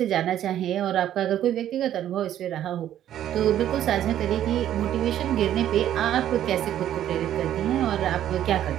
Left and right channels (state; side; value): quieter; left; 11.4 dB